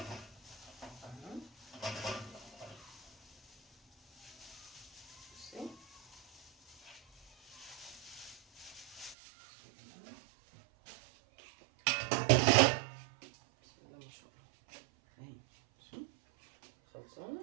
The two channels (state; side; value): drops out; left; at 9.2 s